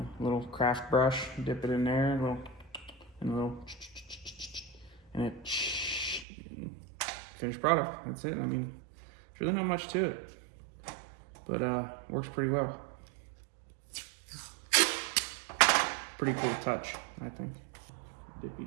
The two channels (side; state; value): left; drops out; at 6.2 s